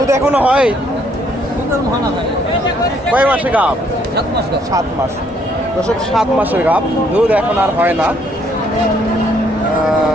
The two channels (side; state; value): both; normal; correlation 0.68